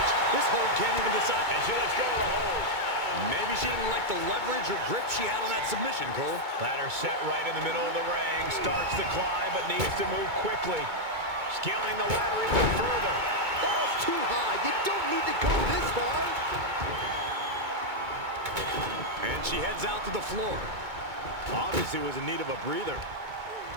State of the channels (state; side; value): late; left; 2.2 ms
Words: This hold can't even decide. And she lets go of the hold. Maybe she didn't like the leverage or grip she had on that submission, Cole. Ladder set right in the middle of the ring. Starts to climb, but needs to move quickly. Scaling the ladder even further. That was too high. You don't need to go this far. And she heads out to the floor. Obviously was in need of a breather.